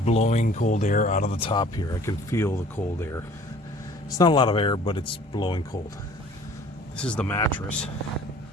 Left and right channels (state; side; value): normal; both; correlation 0.51